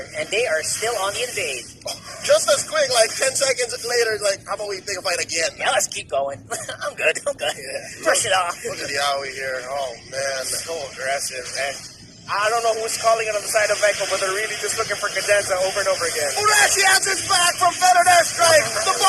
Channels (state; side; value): identical; both; correlation 1.00